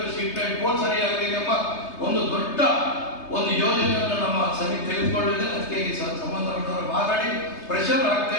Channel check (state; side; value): late; right; 3.3 ms